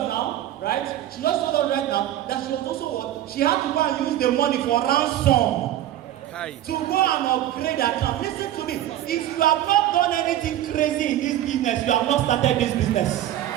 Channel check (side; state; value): left; quieter; 12.7 dB